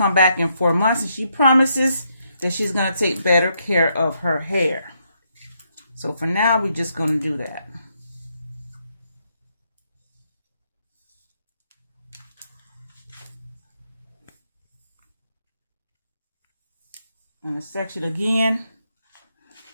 back in 4 months, and she promises that she's going to take better care of her hair. So for now, we're just going to do that. And the section again.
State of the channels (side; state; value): both; inverted; correlation -0.77